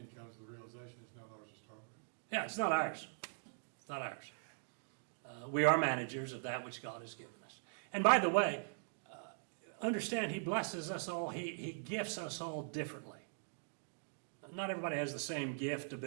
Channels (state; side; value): silent; left; digital silence